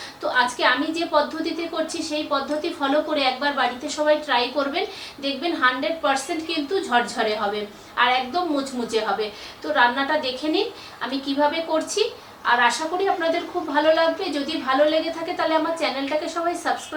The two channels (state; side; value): identical; both; correlation 1.00